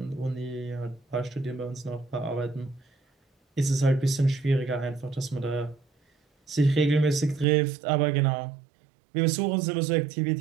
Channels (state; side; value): drops out; left; at 7.5 s